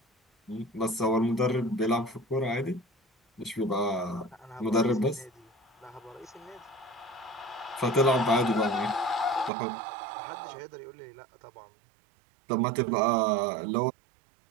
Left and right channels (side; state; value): left; drops out; at 9.5 s